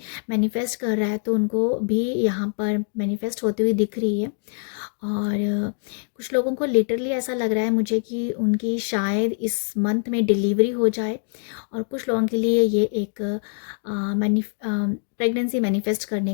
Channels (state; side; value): silent; right; 61 dB below the other